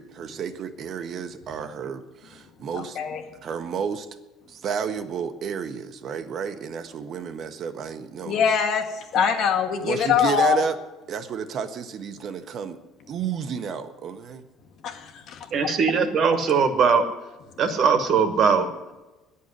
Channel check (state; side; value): normal; both; correlation 0.54